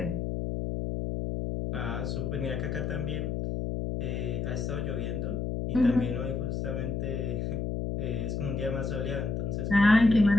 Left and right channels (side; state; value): left; noise; hum, 2 dB below the sound